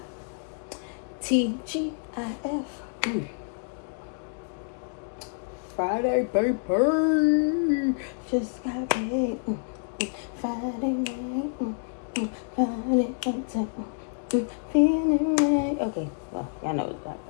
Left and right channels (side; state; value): right; silent; digital silence